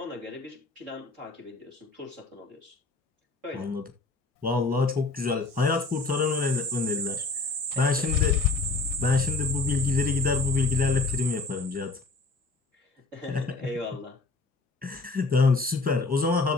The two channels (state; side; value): quieter; right; 3.6 dB